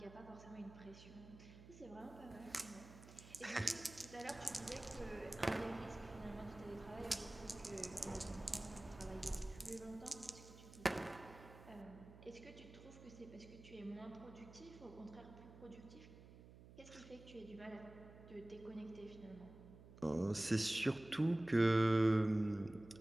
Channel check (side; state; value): right; noise; hum, 17 dB below the sound